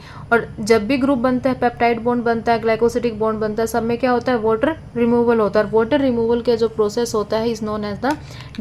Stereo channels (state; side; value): identical; both; correlation 1.00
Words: और जब भी ग्रुप बनता है, पेप्टाइड बॉन्ड बनता है, ग्लाइकोसिडिक बॉन्ड बनता है, सब में क्या होता है, वाटर रिमूवल होता है. और वाटर रिमूवल का जो प्रोसेस होता है is known as the